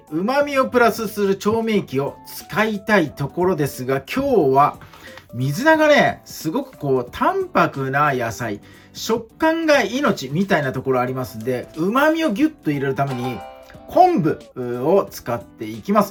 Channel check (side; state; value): both; identical; correlation 1.00